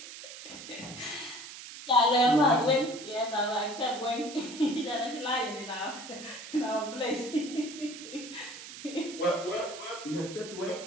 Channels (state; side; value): noise; right; hiss, 13 dB below the sound